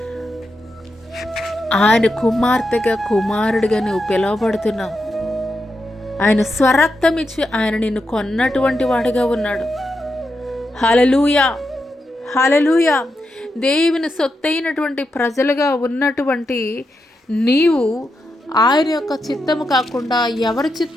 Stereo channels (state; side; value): normal; both; correlation 0.86